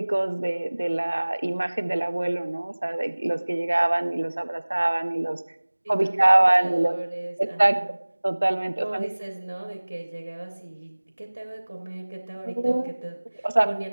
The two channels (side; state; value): both; inverted; correlation -1.00